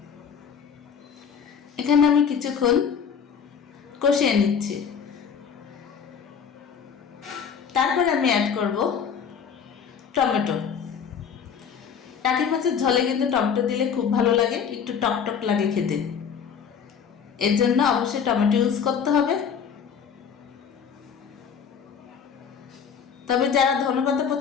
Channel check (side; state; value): right; quieter; 7.1 dB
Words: এখানে আমি কিছুক্ষণ কষিয়ে নিচ্ছি। তারপরে আমি অ্যাড করব টমেটো। টাকি মাছের ঝোলে কিন্তু টমেটো দিলে খুব ভালো লাগে, একটু টক টক লাগে খেতে। এর জন্য অবশ্যই টমেটো ইউজ করতে হবে। তবে যারা ধনেপাতা